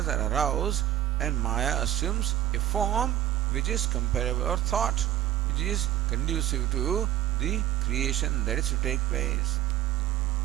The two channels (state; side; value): quieter; left; 12.6 dB